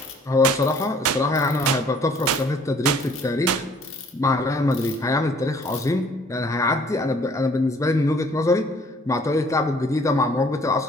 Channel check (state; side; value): normal; both; correlation 0.58